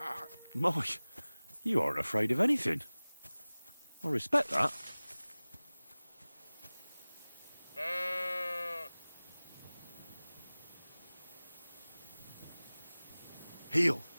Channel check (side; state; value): both; inverted; correlation -0.99